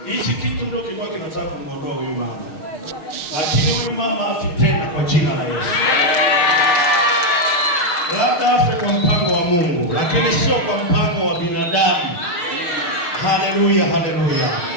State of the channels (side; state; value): right; late; 6.4 ms